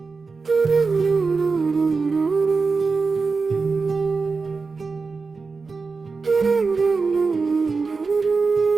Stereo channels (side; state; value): left; quieter; 4.5 dB